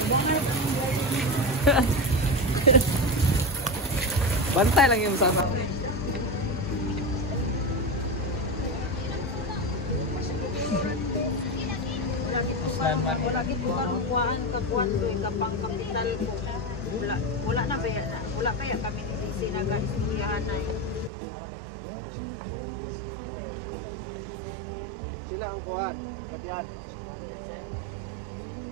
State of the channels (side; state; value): left; drops out; at 21.1 s